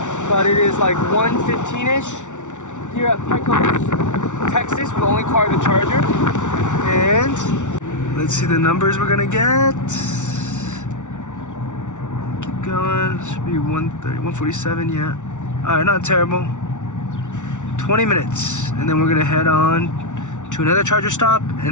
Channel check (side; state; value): right; late; 0.85 ms